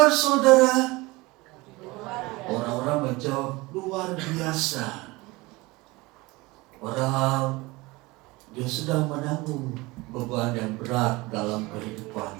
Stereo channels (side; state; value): left; quieter; 22.5 dB